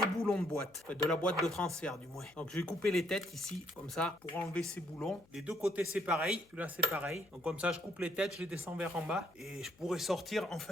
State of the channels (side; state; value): left; noise; hum, 30 dB below the sound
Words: boulons de boîte, enfin, de la boîte de transfert du moins. Donc je vais couper les têtes ici, comme ça, pour enlever ces boulons. Les deux côtés c'est pareil, là c'est pareil. Donc comme ça je coupe les têtes, je les descends vers en bas et je pourrai sortir